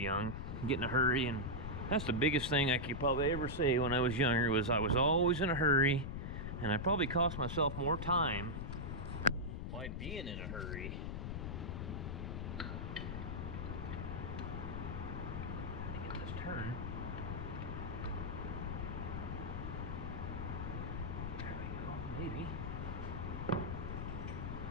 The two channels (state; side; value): noise; left; rumble, 4 dB below the sound